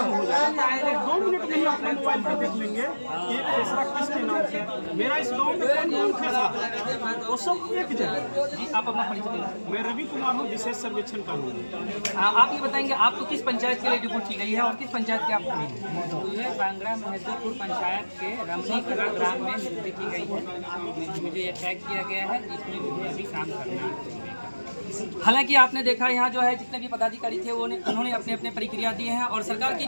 हो जाए तो 2 मिनट में ही अपने मोबाइल पर देख लेंगे कि खेसरा किसके नाम से है। मेरा इस गांव में कौन खेसरा है वो सब एक जगह। जी आप अपना परिचय दें। मैं रवि कुमार हूँ, विशेष सर्वेक्षण कानून। आप ये बताएंगे आपको किस पंचायत के लिए रिपोर्ट की गई है और किस पंचायत के आप मुझे बंगरा महदीपुर पंचायत के रमनी कला ग्राम में नियुक्ति की गई है। मुझे ये टैग किया गया है जिसमें मुझे अभी काम करना है। हालांकि आपने देखा यहाँ जो है जितने भी पदाधिकारी थे उन्होंने अपने अपने प्रक्रिया दिए हैं और सरकार की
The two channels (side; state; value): both; inverted; correlation -1.00